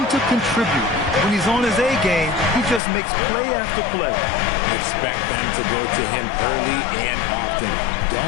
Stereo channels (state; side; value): drops out; right; at 2.8 s